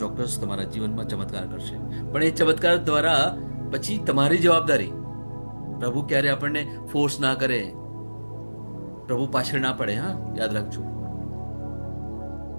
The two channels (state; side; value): inverted; both; correlation -1.00